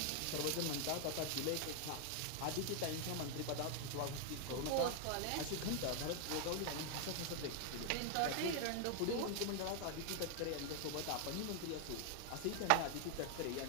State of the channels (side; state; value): both; different; correlation 0.00